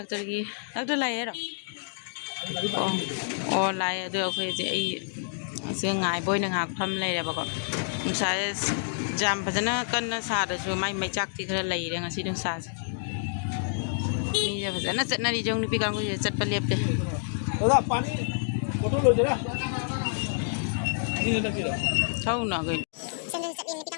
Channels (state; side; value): silent; right; digital silence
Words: ꯂꯥꯛꯑꯦ ꯍꯥꯏꯔꯣ ꯑꯣ ꯂꯥꯛꯑꯦ ꯑꯗꯣ ꯑꯩꯈꯣꯏꯁꯦ ꯑꯩ ꯁꯤꯒ ꯉꯥꯏꯕ ꯑꯣꯏꯅ ꯉꯥꯏꯍꯥꯛ ꯐꯝ ꯂꯩꯔꯦꯕꯀꯣ ꯅꯨꯡꯁꯥꯁꯦ ꯌꯥꯝ ꯐꯖꯅ ꯀꯟꯅ ꯁꯥꯗ꯭ꯔꯁꯨ ꯃꯥꯏ ꯃꯩꯆꯥꯛꯇꯤ ꯈꯔ ꯂꯩꯔꯦ ꯉꯁꯤ ꯅꯨꯡꯁꯥꯁꯦ ꯃꯤꯁꯦ ꯐꯖꯅ ꯆꯠꯅꯔꯤ ꯖꯧ ꯅꯨꯄꯤ ꯀꯥꯡꯕꯨꯁꯦ ꯆꯠꯄ ꯂꯦꯞꯇꯦ ꯊꯧꯅ ꯀꯩꯅꯣ